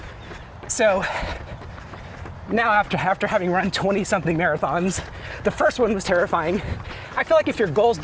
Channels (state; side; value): identical; both; correlation 1.00